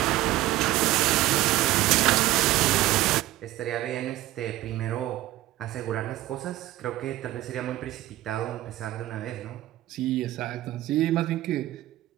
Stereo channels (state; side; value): quieter; left; 16.0 dB